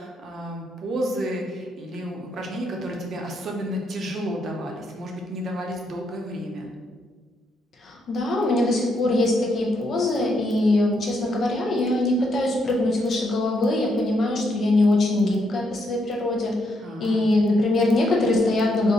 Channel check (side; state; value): both; normal; correlation 0.77